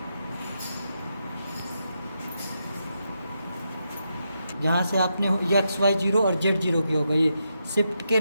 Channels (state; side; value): inverted; both; correlation -0.84